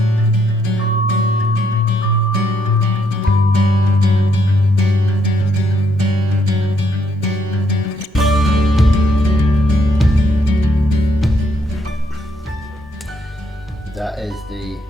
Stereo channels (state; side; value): normal; both; correlation 0.73